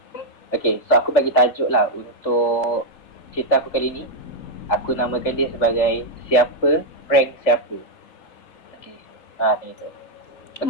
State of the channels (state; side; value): late; right; 3.3 ms